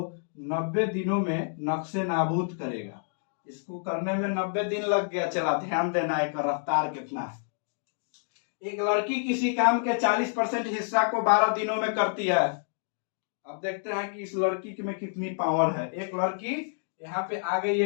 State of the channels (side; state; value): right; silent; digital silence